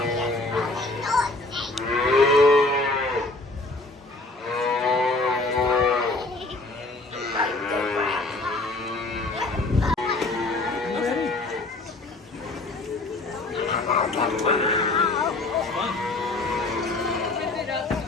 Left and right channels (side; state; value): right; quieter; 3.0 dB